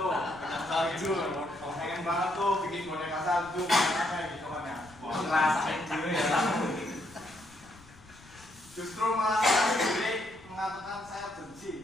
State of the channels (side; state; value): left; noise; rumble, 23 dB below the sound